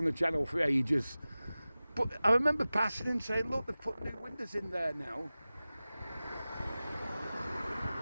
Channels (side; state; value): both; inverted; correlation -0.97